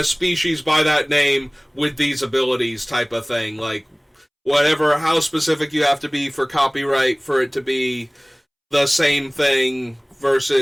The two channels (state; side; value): identical; both; correlation 1.00